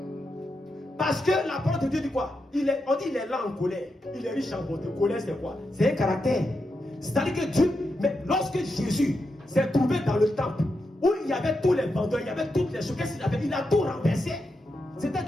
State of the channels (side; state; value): both; normal; correlation 0.86